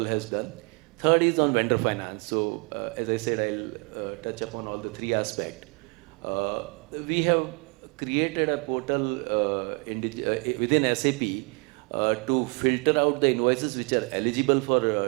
has done. Third is on vendor finance. So as I said, I'll touch upon all the three aspects. We have created a portal within SAP to filter out the invoices which are eligible for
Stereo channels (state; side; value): quieter; left; 33.0 dB